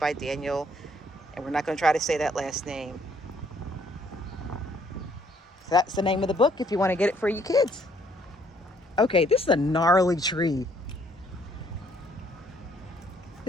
Daniel, and we're not going to try to say that last name. So that's the name of the book if you want to get it for your kids. Okay, this is a gnarly tree.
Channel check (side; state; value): both; normal; correlation 0.65